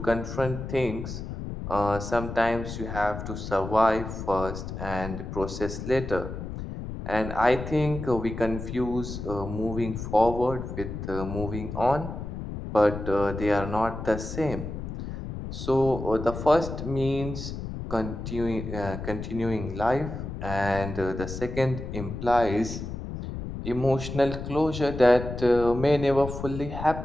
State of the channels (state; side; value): noise; left; rumble, 7 dB below the sound